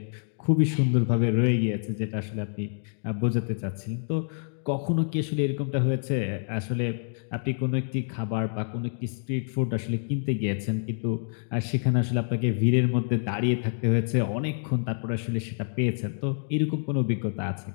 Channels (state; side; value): silent; right; digital silence